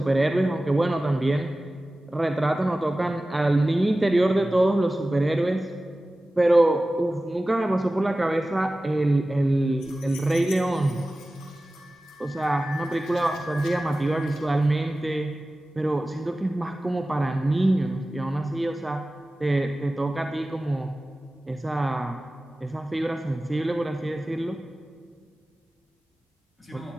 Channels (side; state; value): both; normal; correlation 0.96